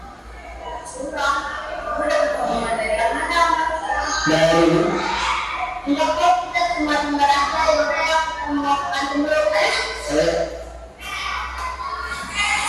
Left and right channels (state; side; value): identical; both; correlation 1.00